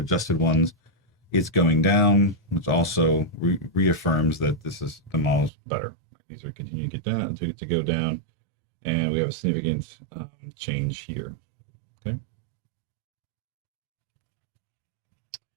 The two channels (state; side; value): drops out; left; at 5.5 s